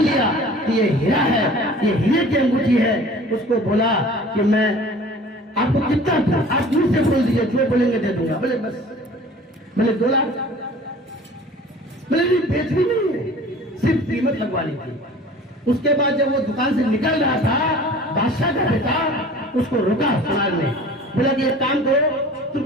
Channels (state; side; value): normal; both; correlation 0.45